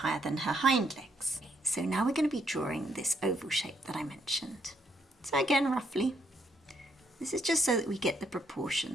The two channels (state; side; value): normal; both; correlation 0.73